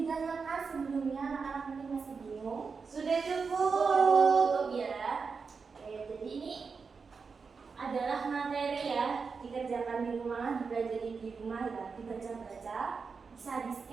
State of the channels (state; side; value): quieter; left; 5.1 dB